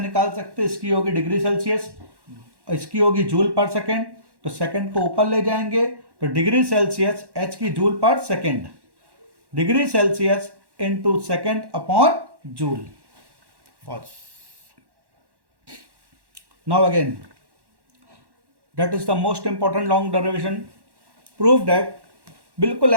सकते हैं, इसकी होगी डिग्री सेल्सियस, इसकी होगी जूल पर सेकेंड. तो सेकेंड को ऊपर ले जाएंगे तो डिग्री सेल्सियस, एच की जूल पर second, degree Celsius into second upon joule. Now again, that is the most important long derivation. Prove that, बिल्कुल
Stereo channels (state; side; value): late; left; 1.1 ms